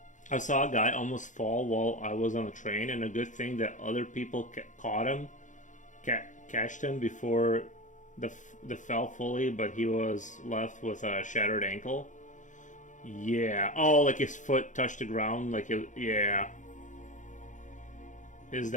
I saw a guy almost fall while I was on the train, and a good thing that other people caught him, catched him before the fell fully, but he was left with a shattered ankle. Yeah. Oh, like his foot touched the ground, like it, yeah. Is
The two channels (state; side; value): late; right; 0.36 ms